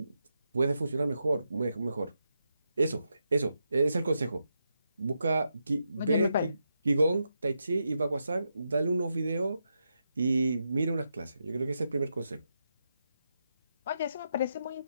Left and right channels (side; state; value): both; inverted; correlation -0.85